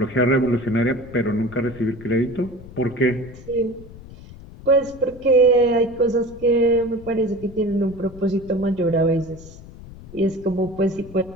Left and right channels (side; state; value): left; noise; rumble, 17 dB below the sound